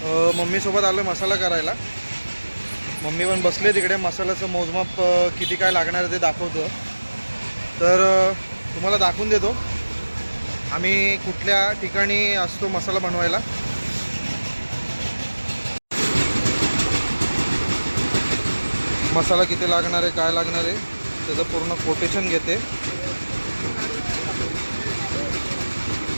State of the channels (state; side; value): inverted; both; correlation -1.00